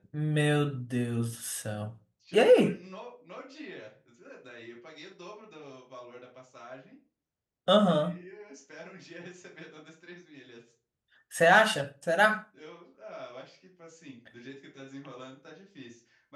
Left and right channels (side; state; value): both; identical; correlation 1.00